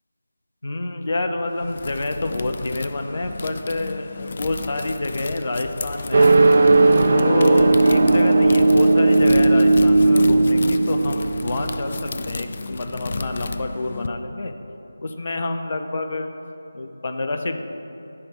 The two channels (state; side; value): inverted; both; correlation -0.95